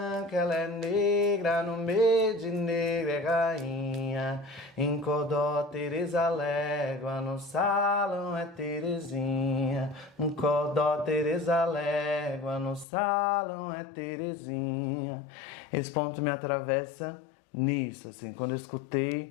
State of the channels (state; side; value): drops out; right; at 12.9 s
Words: ela é negra, no meio de negra é rainha. Em Codó, Tereza Légua, no salão é Terezinha. Em Codó, Tereza Légua, no salão é Terezinha. Esse ponto me atravessa nisso, assim, quando eu